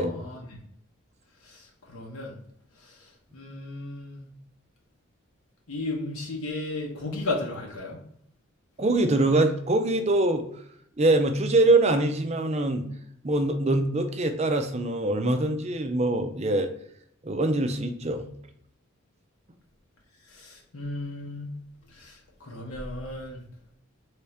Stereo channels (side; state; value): both; normal; correlation 0.43